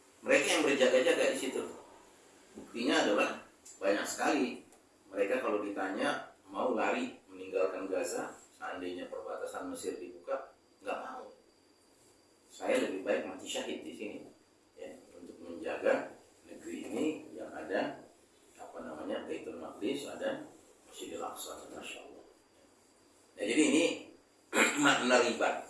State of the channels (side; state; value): both; identical; correlation 1.00